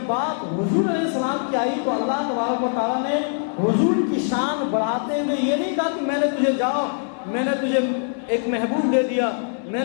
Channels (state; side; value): silent; right; digital silence